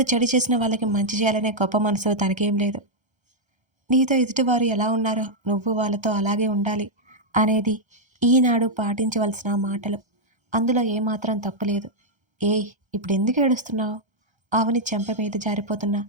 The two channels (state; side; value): late; left; 1.3 ms